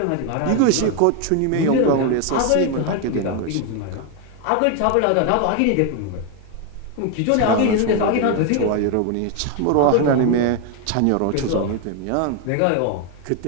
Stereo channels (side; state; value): both; different; correlation 0.01